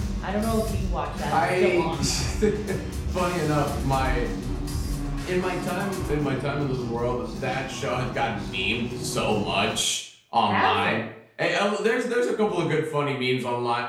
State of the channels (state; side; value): identical; both; correlation 1.00